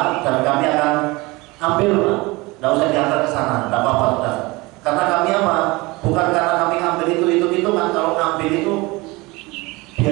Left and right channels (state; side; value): quieter; left; 23.2 dB